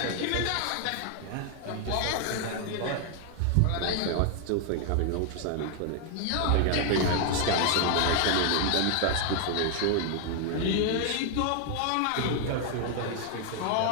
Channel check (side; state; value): both; different; correlation 0.00